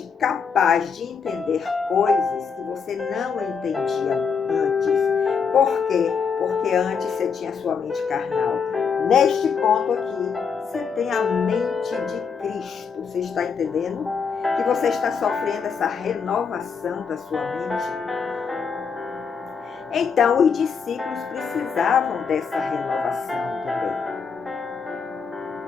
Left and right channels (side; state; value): right; quieter; 6.0 dB